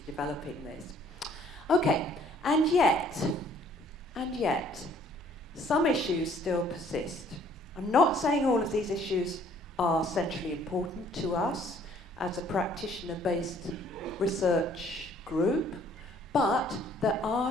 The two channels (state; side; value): normal; both; correlation 0.60